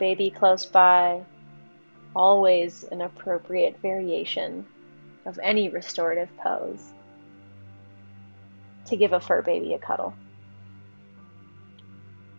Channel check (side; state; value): both; inverted; correlation -1.00